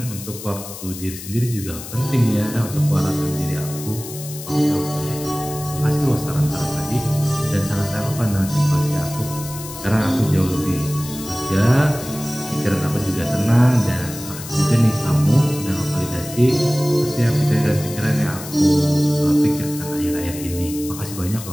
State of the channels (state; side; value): noise; left; hiss, 12 dB below the sound